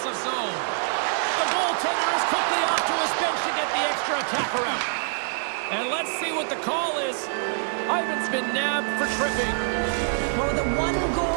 zone. The goaltender is quickly off to his bench to get the extra attacker out. And let's see what the call is. Ivan's been nabbed for tripping. Well, with a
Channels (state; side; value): silent; left; digital silence